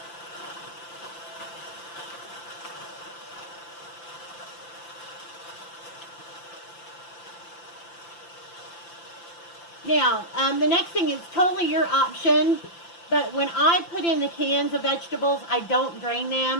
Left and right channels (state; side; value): late; right; 5.9 ms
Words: Now, the next thing is totally your option, but when I put in the cans of vegetables, I don't drain